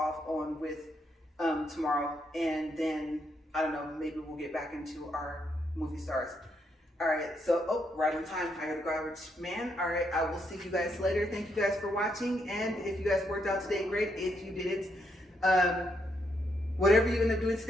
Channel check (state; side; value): normal; both; correlation 0.77